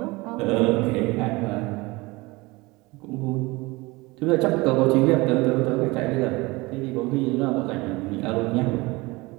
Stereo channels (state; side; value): quieter; left; 23.0 dB